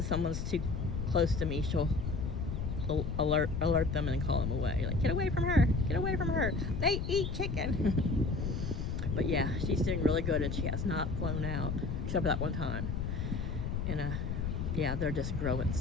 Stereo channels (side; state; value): left; noise; rumble, 2 dB below the sound